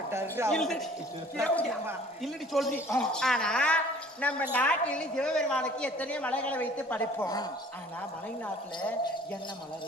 இல்லடி சொல்றி. ஆனா நம்ம நாட்டில் சிவபெருமானுக்கு எத்தனையோ மலைகளை வைத்து படைப்போம். ஆனா மலை நாட்டுல என்ன மலை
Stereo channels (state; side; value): normal; both; correlation 0.51